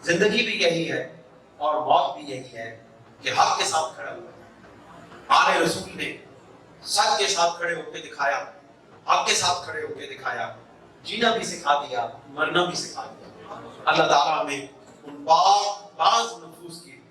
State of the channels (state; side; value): identical; both; correlation 1.00